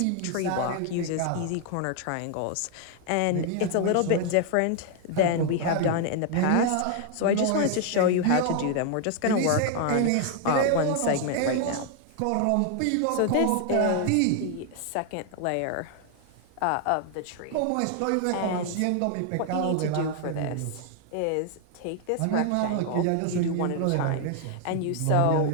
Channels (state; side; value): different; both; correlation 0.00